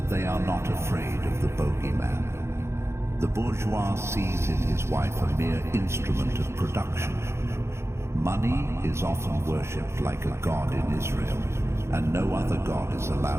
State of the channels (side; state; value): left; late; 0.13 ms